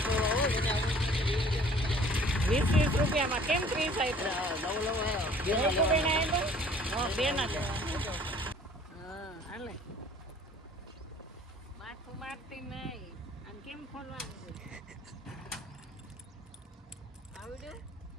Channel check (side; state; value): both; normal; correlation 0.53